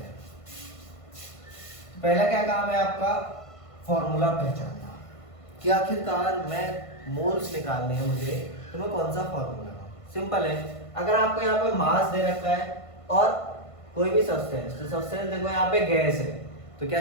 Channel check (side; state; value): right; late; 1.5 ms